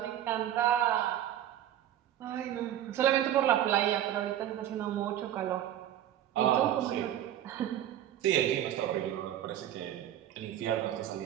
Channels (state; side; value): quieter; left; 11.6 dB